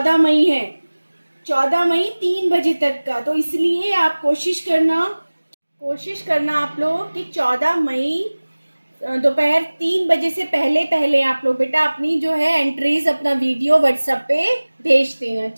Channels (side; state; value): both; inverted; correlation -1.00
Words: मई है, 14 मई 3 बजे तक का। तो इसलिए आप कोशिश करना आप लोग कि 14 मई दोपहर 3 बजे से पहले आप लोग बेटा अपनी जो है एंट्रीज, अपना वीडियो व्हाट्सएप पे भेज देना।